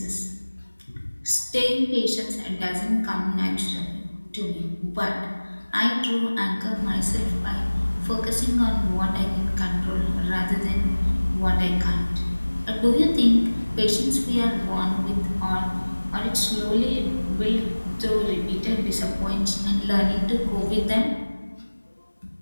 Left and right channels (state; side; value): inverted; both; correlation -1.00